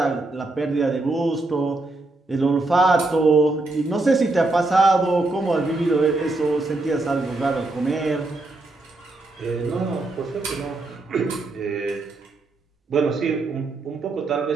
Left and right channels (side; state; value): left; quieter; 3.0 dB